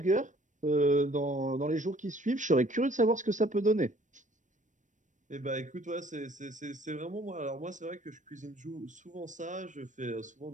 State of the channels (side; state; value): left; late; 0.36 ms